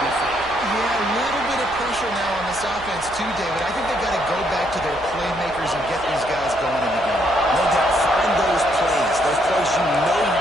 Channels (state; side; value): noise; right; hum, 18 dB below the sound